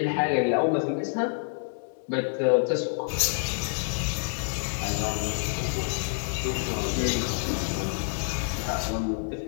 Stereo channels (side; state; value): right; silent; digital silence